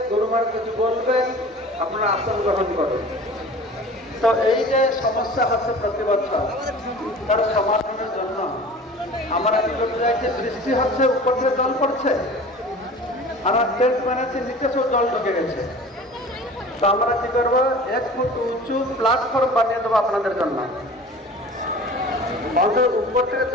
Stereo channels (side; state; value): both; normal; correlation 0.41